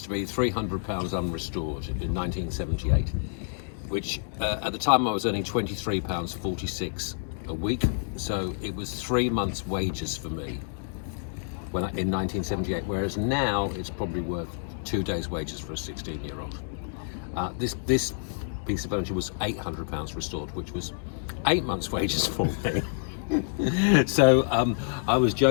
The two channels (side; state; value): right; silent; digital silence